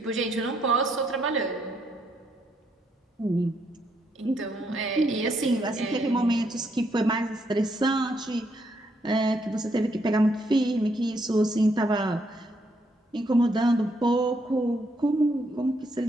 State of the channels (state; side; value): normal; both; correlation 0.75